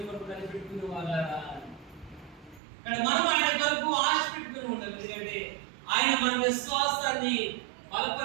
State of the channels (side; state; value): left; drops out; at 2.6 s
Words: కొరకు కనిపెట్టుకునే వాళ్ళ. కానీ మనం ఆయన కొరకు ఆశ పెట్టుకుని ఉండాలి. ఎందుకంటే ఆయన మన విశ్వాసాన్ని